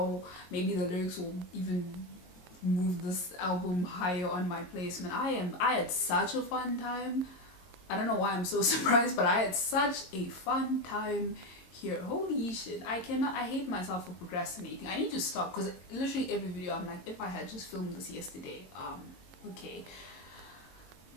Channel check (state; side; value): late; right; 22 ms